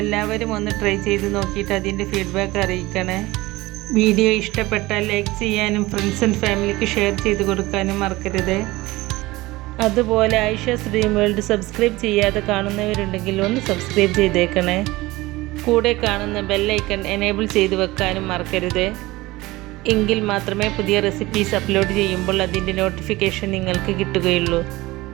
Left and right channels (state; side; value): quieter; left; 19.7 dB